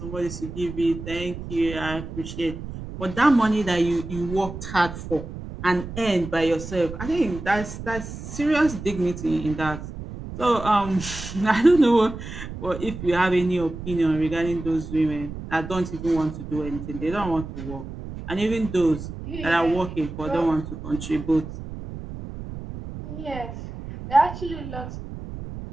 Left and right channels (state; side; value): noise; right; rumble, 10 dB below the sound